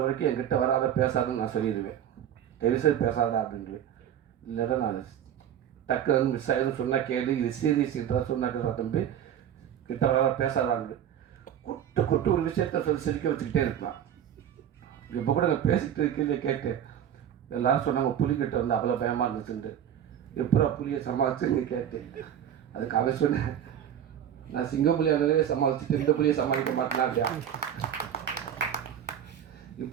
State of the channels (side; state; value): left; quieter; 9.7 dB